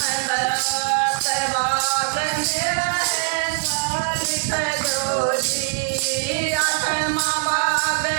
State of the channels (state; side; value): silent; left; 64 dB below the other